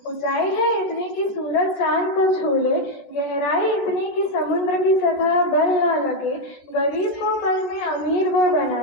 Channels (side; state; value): right; late; 13 ms